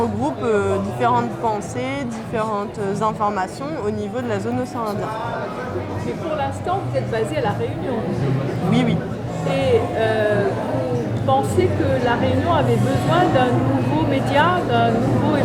différentes pensées, différentes informations au niveau de la zone océan Indien. Mais pour l'instant, vous êtes basé à La Réunion. Oui, oui. Et vous pensez que La Réunion avait besoin d'un nouveau média, d'un nouveau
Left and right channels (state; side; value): identical; both; correlation 1.00